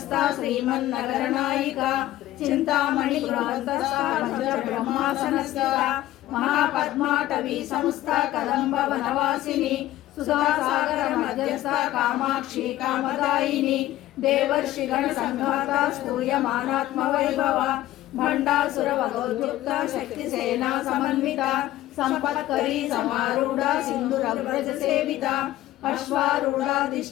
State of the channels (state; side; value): quieter; right; 14.9 dB